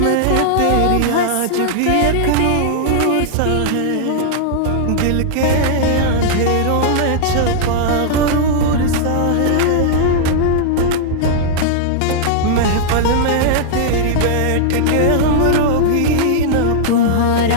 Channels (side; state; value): both; different; correlation -0.01